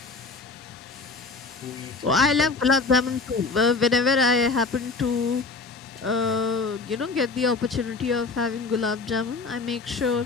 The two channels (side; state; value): right; quieter; 4.0 dB